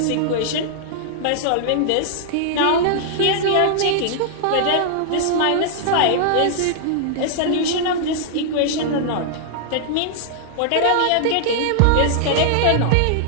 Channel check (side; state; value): both; different; correlation -0.01